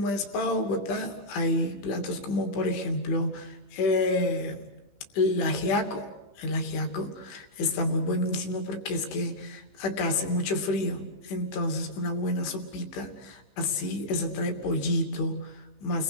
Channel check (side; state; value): right; late; 15 ms